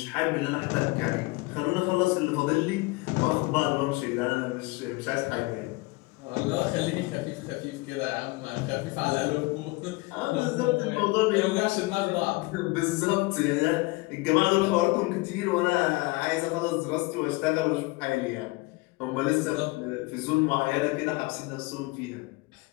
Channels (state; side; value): quieter; right; 23.3 dB